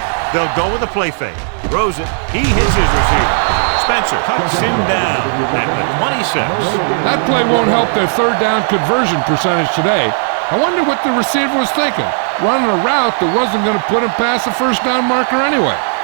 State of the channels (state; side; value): silent; left; digital silence